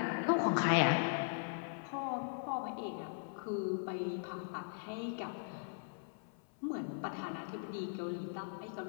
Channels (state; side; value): silent; right; 52 dB below the other